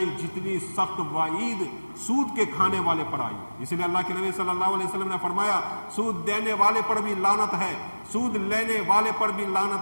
جتنی سخت وعید سود کے کھانے والے پر آئی۔ اس لیے اللہ کے نبی صلی اللہ علیہ وسلم نے فرمایا سود دینے والے پر بھی لعنت ہے، سود لینے والے پر بھی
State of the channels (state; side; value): inverted; both; correlation -1.00